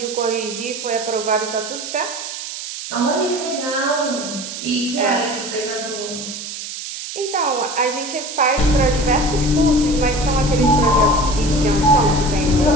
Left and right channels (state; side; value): noise; right; hiss, 8 dB below the sound